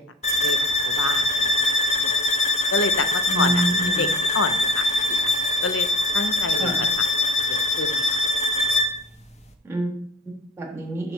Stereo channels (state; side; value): normal; both; correlation 0.40